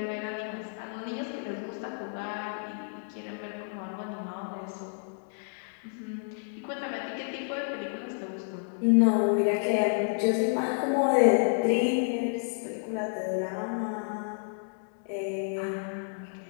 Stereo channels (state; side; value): silent; right; digital silence